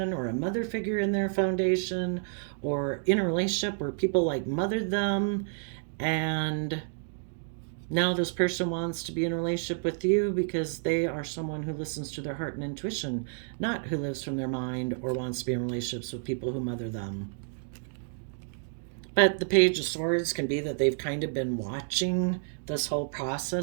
or a mother figure in their foundation, or in a relationship where people like mothered them. And now this person wants to be in a relationship with you because they are someone who listens to their heart and intuition, not who lives from their mind or wants to be in relationships with people who mother them. But the Page of Swords can be that they've kind of been watching this whole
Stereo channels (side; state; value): left; silent; 58 dB below the other